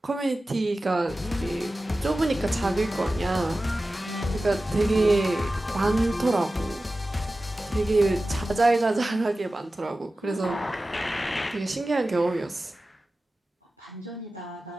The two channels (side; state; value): both; normal; correlation 0.95